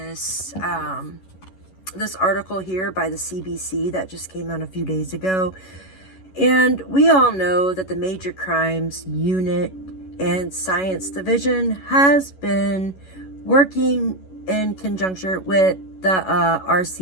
this article here by the CBC that just came out a few days ago. And we all know that the Major Crimes Unit and Science Division has been working in conjunction with the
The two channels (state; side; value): late; right; 11 ms